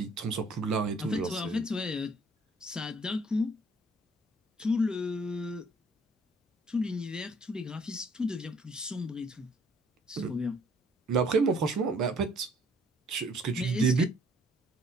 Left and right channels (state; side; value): normal; both; correlation 0.61